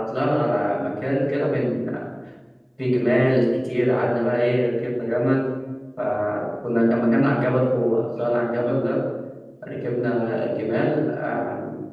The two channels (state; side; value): identical; both; correlation 1.00